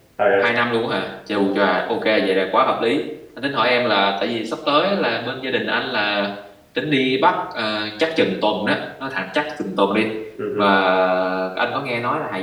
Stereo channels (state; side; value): identical; both; correlation 1.00